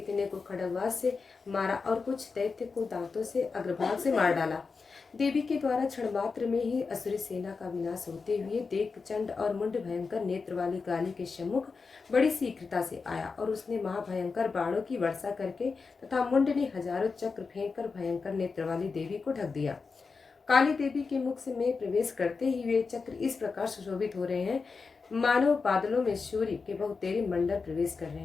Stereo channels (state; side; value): quieter; right; 4.7 dB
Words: को खड्गवाज से मारा और कुछ दैत्य को दांतों से अग्रभाग से मार डाला। देवी के द्वारा क्षण मात्र में ही असुरी सेना का विनाश होते हुए देख चंड और मुंड भयंकर नेत्र वाली काली के सम्मुख बड़ी शीघ्रता से आया और उसने महाभयंकर बाणों की वर्षा करके तथा मुंड ने हजारों चक्र फेंककर भयंकर नेत्र वाली देवी को ढक दिया। काली देवी के मुख से में प्रवेश करते ही वे चक्र इस प्रकार सुशोभित हो रहे हैं मानो बादलों में सूर्य के बहुतेरे मंडल प्रवेश कर रहे